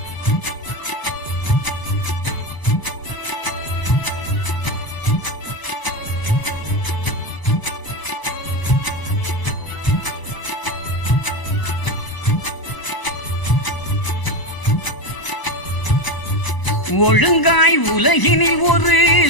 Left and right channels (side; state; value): right; late; 1.0 ms